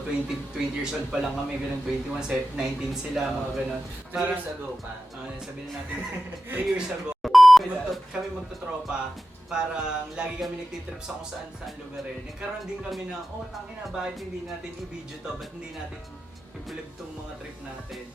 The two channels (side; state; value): both; normal; correlation 0.93